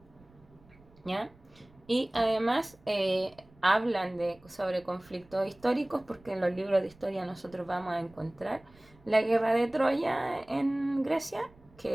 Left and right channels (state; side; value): noise; right; rumble, 27 dB below the sound